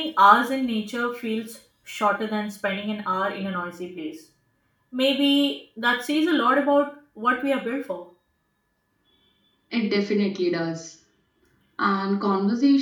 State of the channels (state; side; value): identical; both; correlation 1.00